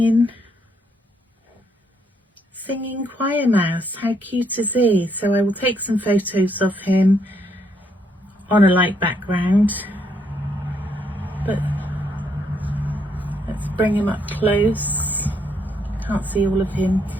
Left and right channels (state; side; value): normal; both; correlation 0.72